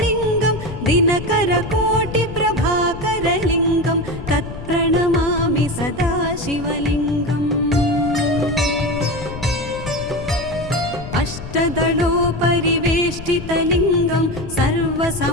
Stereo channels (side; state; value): left; noise; rumble, 11 dB below the sound